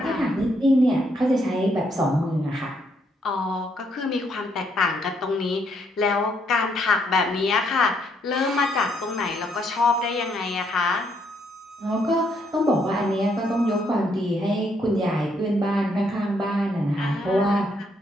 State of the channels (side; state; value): both; normal; correlation 0.73